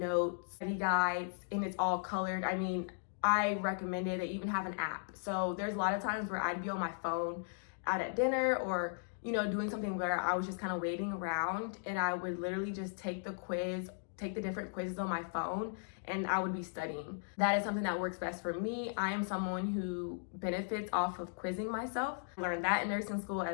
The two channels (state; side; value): silent; right; digital silence